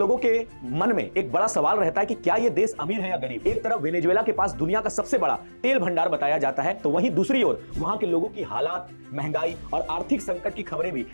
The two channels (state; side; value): inverted; both; correlation -1.00